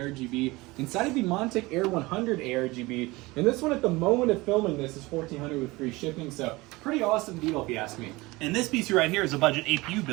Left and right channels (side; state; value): left; quieter; 21.9 dB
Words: inside of the Montec Air 100 ARGB, and this one at the moment of filming this is $1,400 with free shipping, so pretty awesome deal if you ask me. And this PC right here is a budget APU